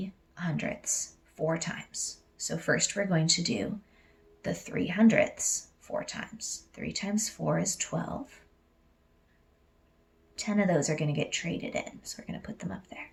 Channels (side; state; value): both; identical; correlation 1.00